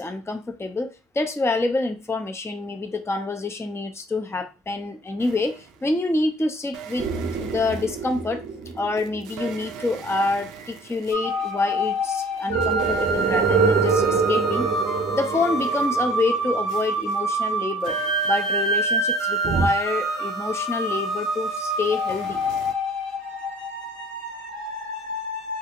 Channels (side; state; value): both; normal; correlation 0.52